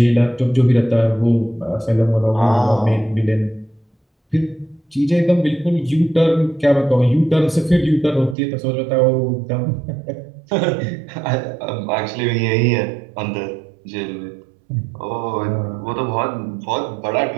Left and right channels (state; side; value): drops out; left; at 8.3 s